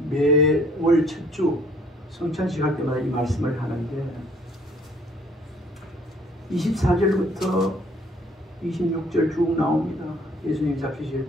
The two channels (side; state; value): both; normal; correlation 0.60